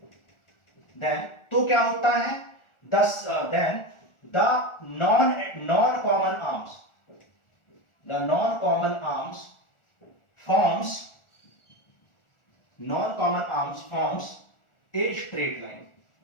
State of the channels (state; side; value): late; right; 1.4 ms